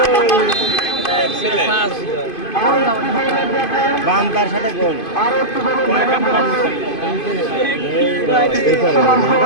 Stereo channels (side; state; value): right; late; 2.5 ms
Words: বাম তার সাথে গোল আর একটু